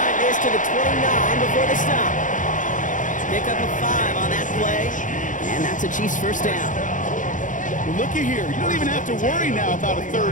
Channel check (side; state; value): right; late; 0.37 ms